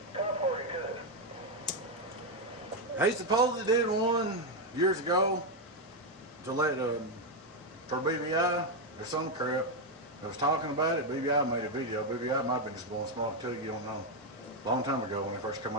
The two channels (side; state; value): both; normal; correlation 0.03